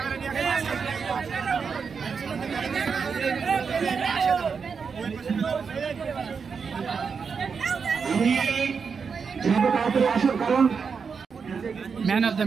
ম্যান অফ দ্য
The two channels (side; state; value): left; quieter; 5.7 dB